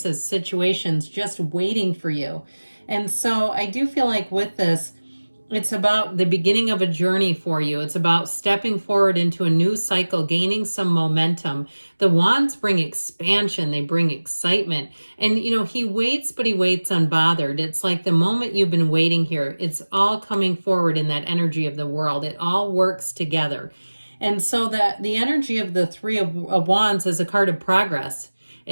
situations just waiting for you. And so I do feel like with this, it's about the beginning of a journey for you. It's about stepping forward into a new cycle, gaining some momentum. The wands bring expansion. They bring excitement. And, you know, he waits, but he waits unbothered. It's like the moment you've been waiting here, it's all coming forward in that energy of the world. It all works together. And so that the energy of the Three of Wands is a card of progress.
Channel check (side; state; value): both; inverted; correlation -1.00